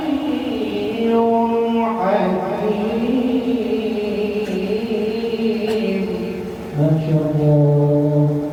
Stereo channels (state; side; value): identical; both; correlation 1.00